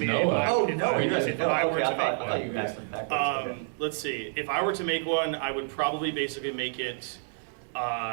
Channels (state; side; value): silent; left; digital silence